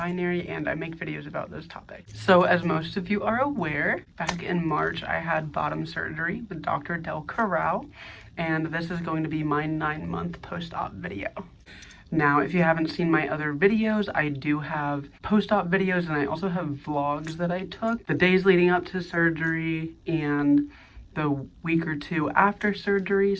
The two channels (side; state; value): both; identical; correlation 1.00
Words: and I make videos about those topics. So as most of you are aware, back in March I had bottom surgery with Dr. Del Corral, and this is going to be my 9-month post-op video. Now, if you haven't seen my other videos, I do have post-op videos, and I also have vlogs that I took the days leading up to surgery and the week or two after surgery.